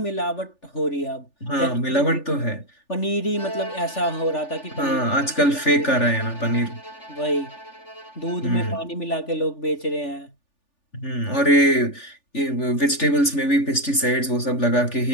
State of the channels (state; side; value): late; right; 3.4 ms